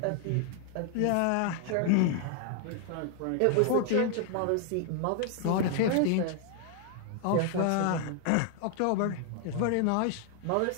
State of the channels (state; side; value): different; both; correlation 0.00